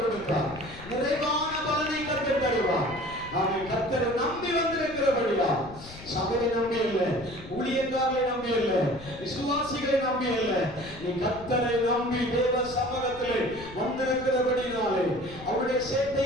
கொடுத்தார். நிறைவான பலனை கர்த்தர் தருவார். அவன் கர்த்தரை நம்பி வந்திருக்கிறபடியா, சபையை நம்பி இல்லை, ஊழியக்காரரை நம்பி இல்லை, விசுவாசிகளை நம்பி இல்லை, நீ கர்த்தரை நம்பி தேவ சமூகத்திலே வந்திருக்கிறபடினாலே, அவருடைய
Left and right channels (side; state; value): left; noise; rumble, 17 dB below the sound